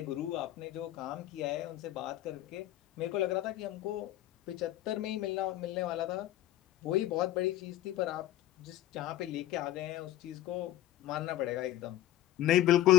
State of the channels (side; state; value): right; quieter; 14.1 dB